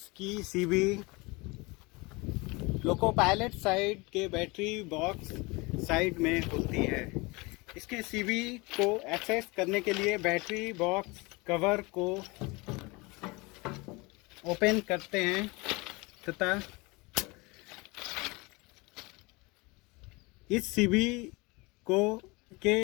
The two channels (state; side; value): quieter; right; 25.5 dB